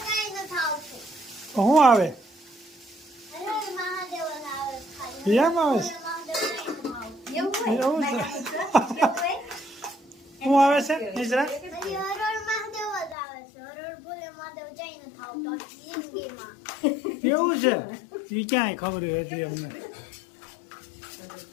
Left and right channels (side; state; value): right; drops out; at 13.2 s